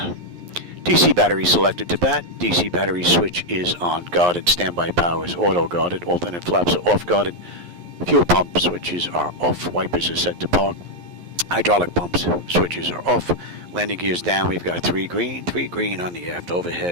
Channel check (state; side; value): late; left; 11 ms